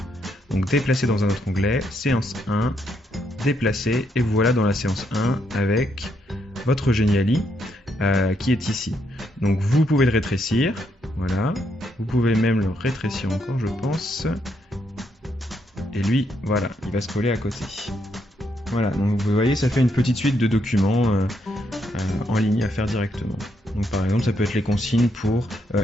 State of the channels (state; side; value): normal; both; correlation 0.77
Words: Donc déplacer dans un autre onglet, séance 1, déplacer, et vous voilà dans la séance 1 avec votre Geniali qui est ici. Donc vous pouvez le rétrécir, voilà. Vous pouvez même le rétrécir encore, je pense. Et lui, voilà, il va se coller à côté. Voilà, donc vous voyez, ça fait une petite suite de documents en ligne à faire directement. Donc par exemple, ça peut être les consignes pour